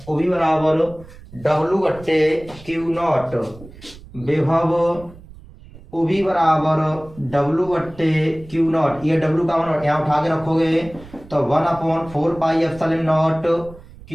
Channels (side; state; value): right; noise; rumble, 19 dB below the sound